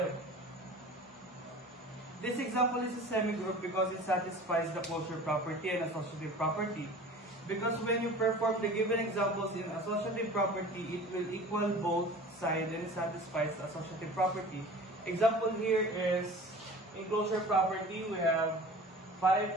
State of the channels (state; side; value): normal; both; correlation 0.41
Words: This example is a semigroup because it satisfies the closure property and associative property. Because when you perform the given examples in associative property, it will equal both sides and it satisfies the associative property. Example here is, in closure property, we have